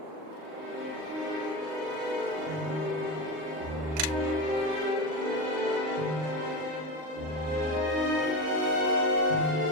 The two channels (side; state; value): left; late; 39 ms